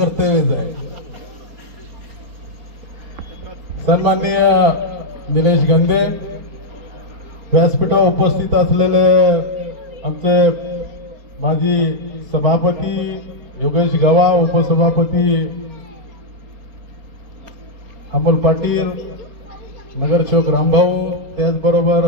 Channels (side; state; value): left; late; 4.3 ms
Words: आहे। सन्माननीय निलेश गंदे, व्यासपीठावर उपस्थित असलेले आमचे माजी सभापती योगेश गवा, उपसभापती अमोल पाटील, नगरसेवक रामभाऊ, त्याचबरोबर